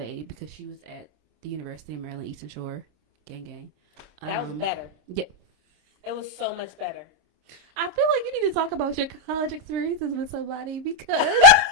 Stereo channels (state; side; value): late; left; 26 ms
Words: because she was at the University of Maryland, Eastern Shore. Gang. That was better. Yeah. It was so much better. I feel like you need to talk about your college experiences with somebody because